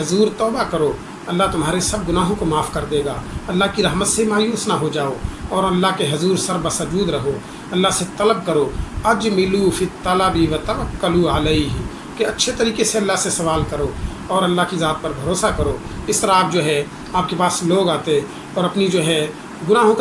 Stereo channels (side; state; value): both; identical; correlation 1.00